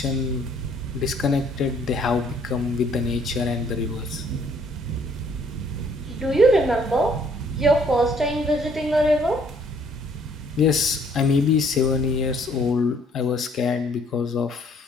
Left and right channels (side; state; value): both; normal; correlation 0.63